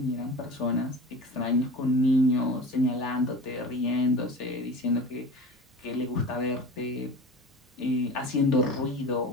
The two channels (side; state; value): both; normal; correlation 0.35